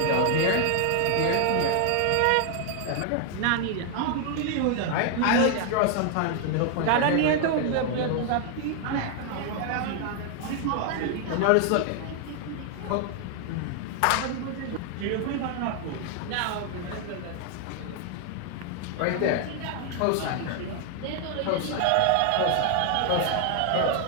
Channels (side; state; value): both; different; correlation 0.00